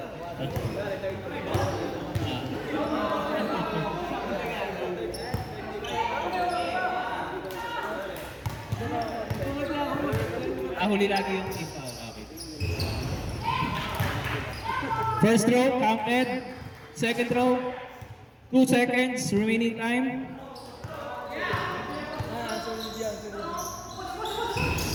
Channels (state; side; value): identical; both; correlation 1.00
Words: Huli lagi yung team foul. Okay. First throw, counted. Second throw, 2 seconds remaining time.